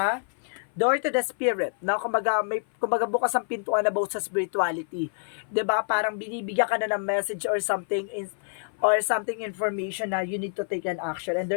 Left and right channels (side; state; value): right; silent; 58 dB below the other